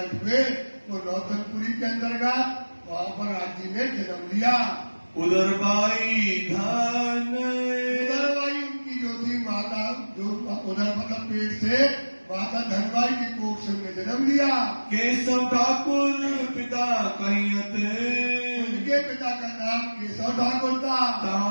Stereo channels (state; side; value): inverted; both; correlation -1.00